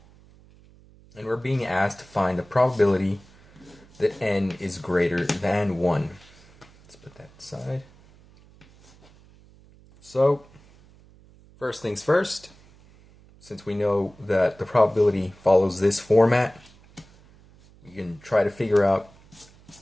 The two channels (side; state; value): right; noise; hum, 26 dB below the sound